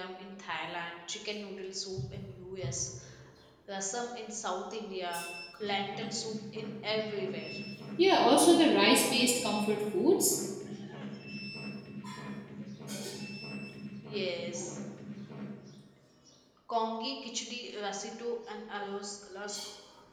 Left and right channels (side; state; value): both; identical; correlation 1.00